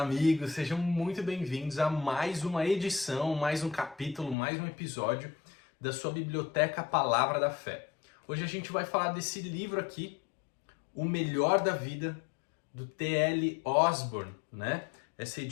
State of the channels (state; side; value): drops out; right; at 4.4 s